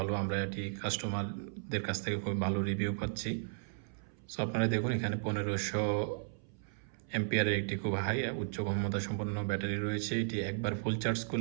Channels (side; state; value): left; silent; 54 dB below the other